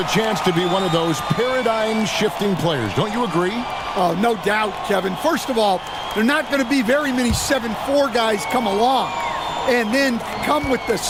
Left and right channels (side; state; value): both; identical; correlation 1.00